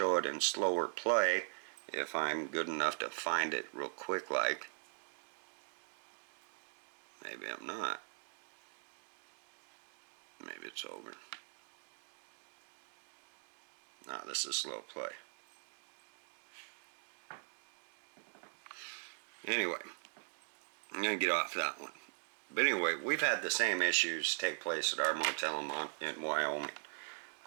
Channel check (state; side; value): silent; left; digital silence